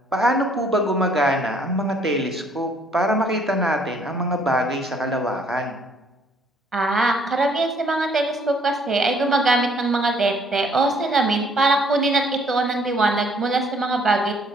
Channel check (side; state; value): both; normal; correlation 0.63